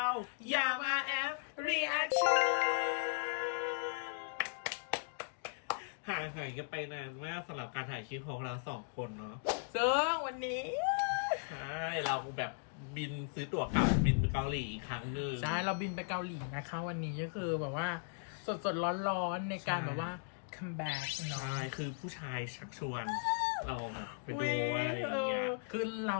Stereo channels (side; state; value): right; silent; digital silence